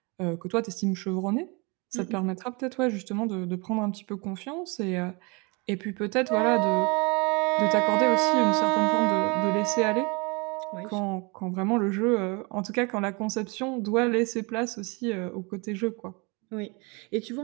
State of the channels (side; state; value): left; quieter; 29.2 dB